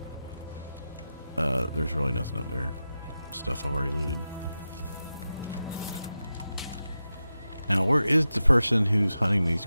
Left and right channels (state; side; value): inverted; both; correlation -0.92